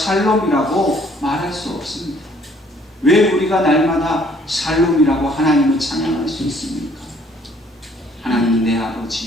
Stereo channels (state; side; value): normal; both; correlation 0.61